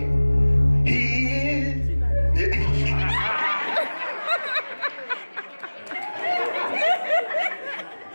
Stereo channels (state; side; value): inverted; both; correlation -1.00